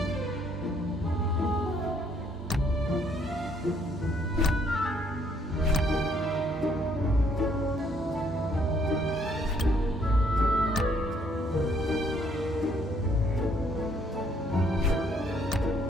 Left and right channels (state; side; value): normal; both; correlation 0.67